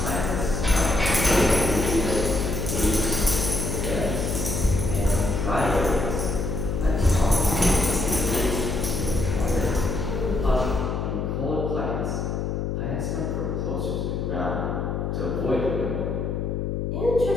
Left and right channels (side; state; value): left; noise; hum, 2 dB below the sound